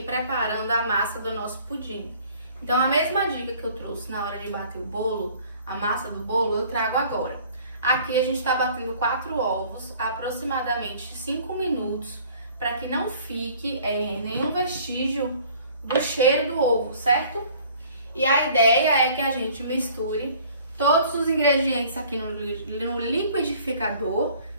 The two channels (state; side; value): inverted; both; correlation -0.53